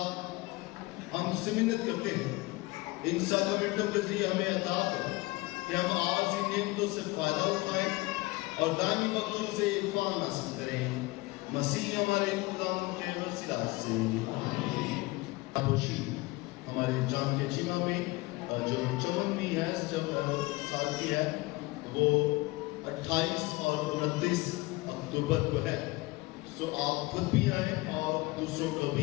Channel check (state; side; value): quieter; right; 22.2 dB